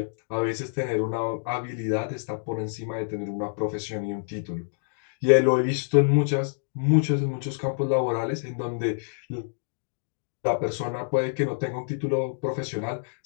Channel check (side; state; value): right; silent; digital silence